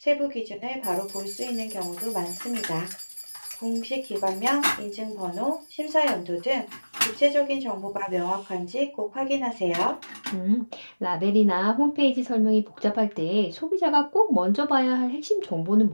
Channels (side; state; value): both; inverted; correlation -1.00